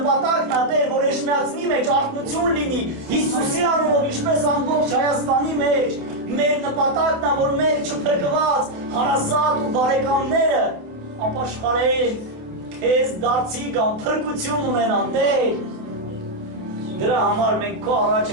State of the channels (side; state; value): left; late; 27 ms